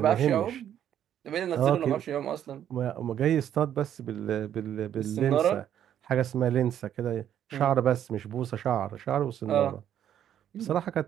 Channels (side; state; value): left; quieter; 10.3 dB